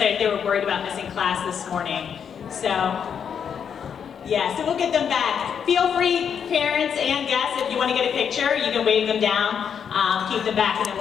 they were worried about missing class this morning. So, yeah, so we'll get them back. Feel free, parents and guests, if you want to get a picture, you can wave them down, keep them back, and then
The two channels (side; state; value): right; quieter; 7.5 dB